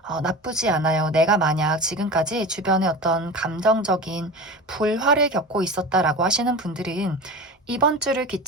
나쁘지 않아요. 내가 만약 지금까지 주변에 어떤 감정적인 불화를 겪고 있었다라고 하시는 분들은 이번 주를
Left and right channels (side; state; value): both; normal; correlation 0.31